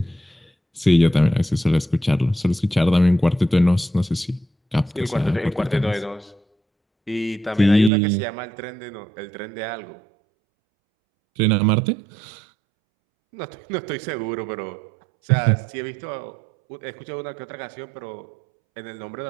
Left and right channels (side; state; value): left; drops out; at 7.9 s